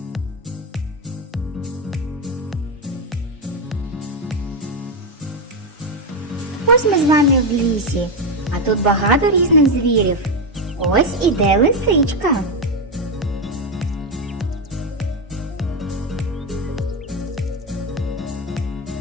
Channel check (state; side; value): normal; both; correlation 0.08